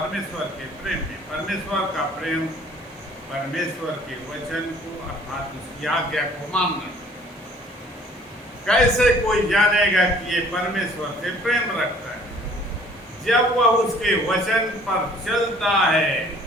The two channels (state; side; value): normal; both; correlation 0.55